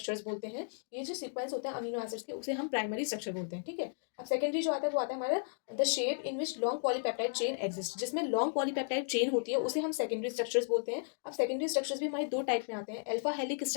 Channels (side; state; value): right; silent; digital silence